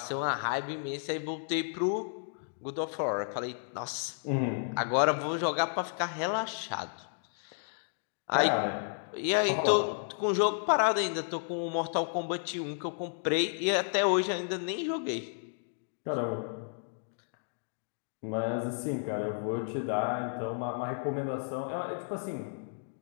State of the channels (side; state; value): right; silent; digital silence